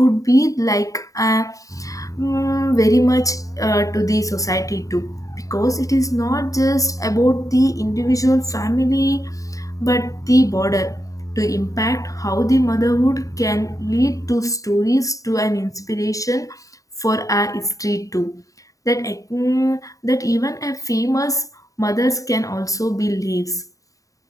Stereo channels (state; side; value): late; right; 0.16 ms